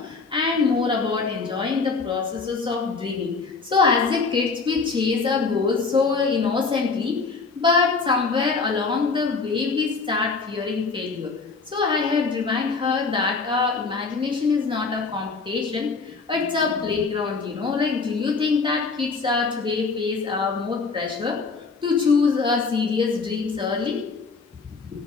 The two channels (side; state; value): right; quieter; 4.5 dB